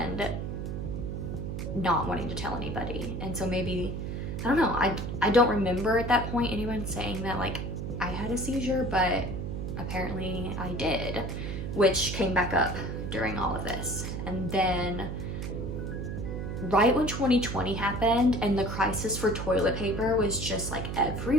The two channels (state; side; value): noise; right; hum, 4 dB below the sound